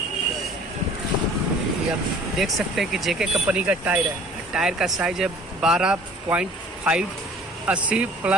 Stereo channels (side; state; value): both; normal; correlation 0.50